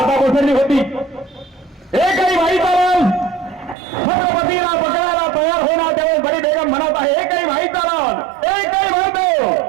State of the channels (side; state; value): left; drops out; at 3.8 s